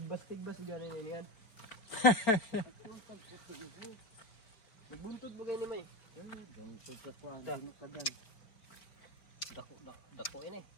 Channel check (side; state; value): right; late; 4.7 ms